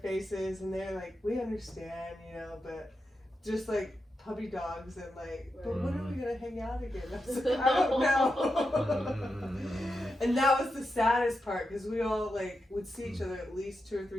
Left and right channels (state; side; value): normal; both; correlation 0.88